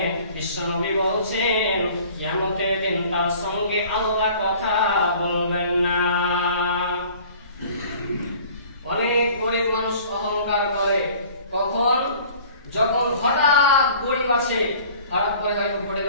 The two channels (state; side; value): inverted; both; correlation -0.49